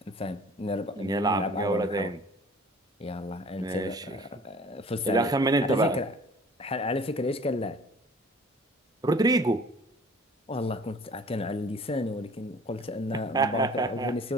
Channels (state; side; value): normal; both; correlation 0.49